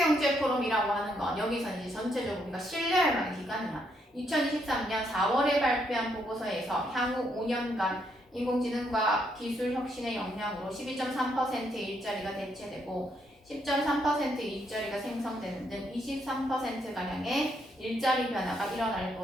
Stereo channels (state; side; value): normal; both; correlation 0.75